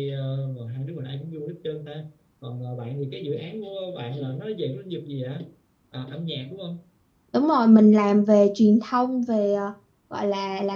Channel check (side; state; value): both; identical; correlation 1.00